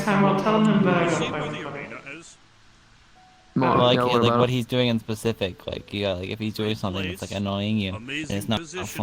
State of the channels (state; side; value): identical; both; correlation 1.00